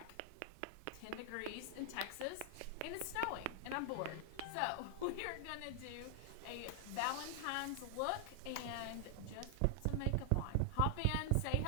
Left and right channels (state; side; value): different; both; correlation 0.00